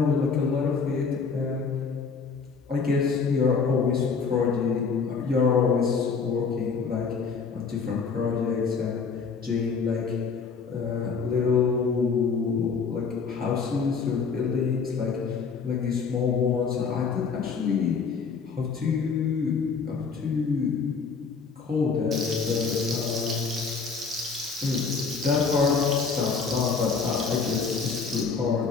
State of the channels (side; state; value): right; quieter; 5.3 dB